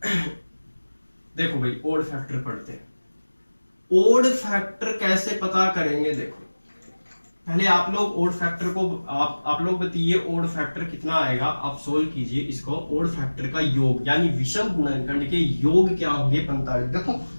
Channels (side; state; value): both; inverted; correlation -1.00